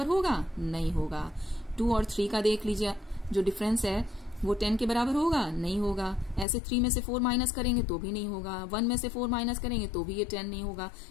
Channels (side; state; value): right; drops out; at 6.5 s